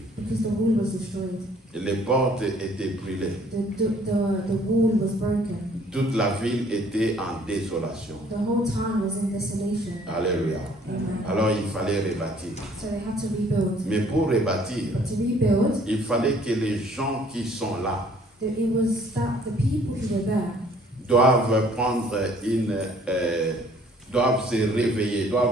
because the wall was destroyed. Les portes étaient brûlées. The wall was broken. Toute la ville était en désolation. The whole town was in desolation. Alléluia. Amen. Alors il fallait rebâtir. So they had to rebuild. Mais pour rebâtir, But to rebuild, il fallait que les gens qui sont là it was that the people who were there doivent doivent se réveiller,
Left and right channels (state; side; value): normal; both; correlation 0.58